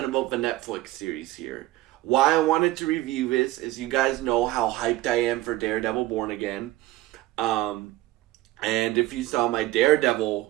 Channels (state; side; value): quieter; left; 16.8 dB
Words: about the Netflix series here. Why I wanted to review this is you guys know how hyped I am for Daredevil Born Again. Um, and if you saw my Daredevil